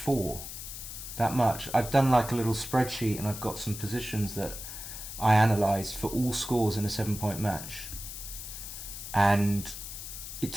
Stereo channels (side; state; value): left; noise; hiss, 9 dB below the sound